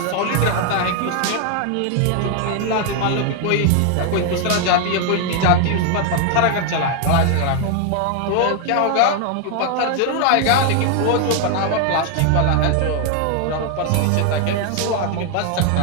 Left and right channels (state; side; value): different; both; correlation 0.00